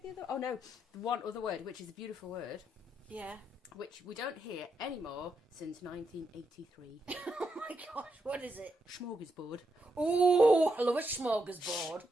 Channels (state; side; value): normal; both; correlation 0.82